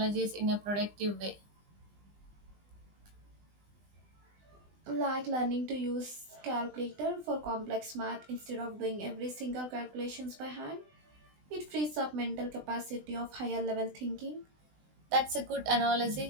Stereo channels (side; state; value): left; late; 20 ms